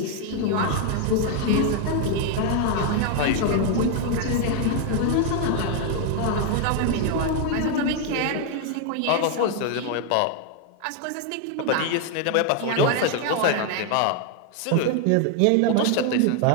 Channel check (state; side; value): different; both; correlation 0.00